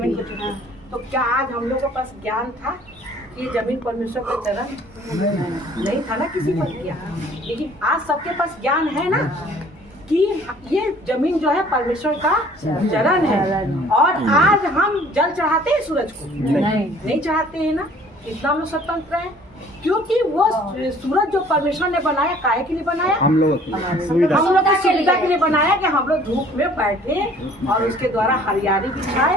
को छूते हैं। तो क्या आज हम लोग के पास ज्ञान था कि ये जमीन परमेश्वर का चरण नहीं था ना, किसी पर किया, लेकिन आज सबके पास ज्ञान है ना कि ये जमीन जो है परमेश्वर का चरण है। और आज हम जल चढ़ाते हैं सूरज को, नहीं चढ़ाते हैं ना। इतना हम लोग स्वतंत्र हैं क्योंकि वो सूरज जो परमेश्वर ने बनाया, काहे के लिए बनाया, हम लोग की सुविधा के लिए बनाया कि हम लोग धूप में बैठे और उसके द्वारा हरियाली भी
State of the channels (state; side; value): normal; both; correlation 0.54